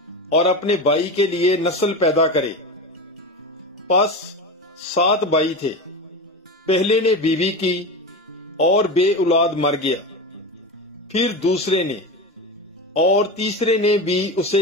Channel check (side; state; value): both; normal; correlation 0.23